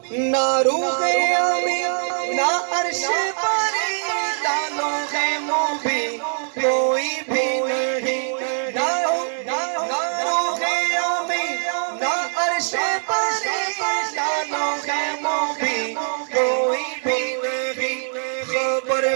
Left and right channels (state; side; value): silent; left; 64 dB below the other